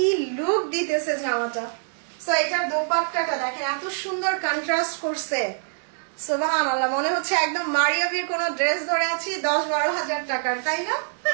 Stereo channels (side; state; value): left; silent; digital silence